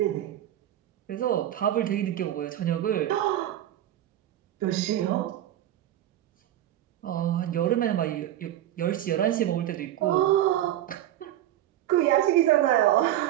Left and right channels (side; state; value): left; quieter; 12.7 dB